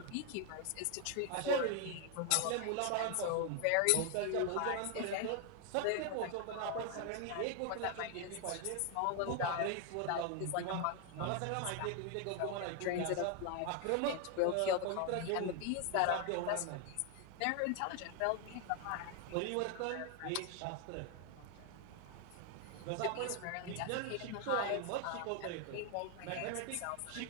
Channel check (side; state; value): both; different; correlation 0.00